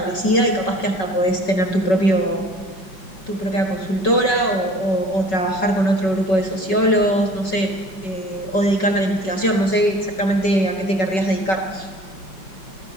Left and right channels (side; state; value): right; late; 5.3 ms